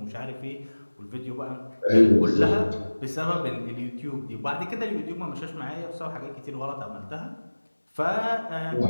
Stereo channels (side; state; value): both; inverted; correlation -1.00